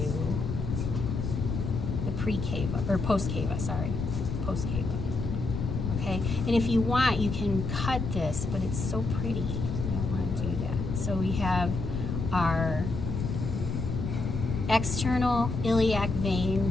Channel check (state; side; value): noise; left; rumble, 3 dB below the sound